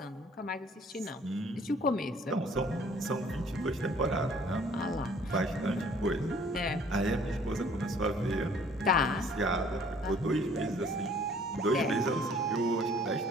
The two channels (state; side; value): normal; both; correlation 0.56